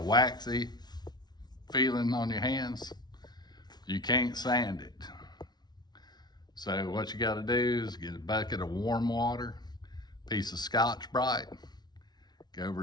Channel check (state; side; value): late; right; 0.20 ms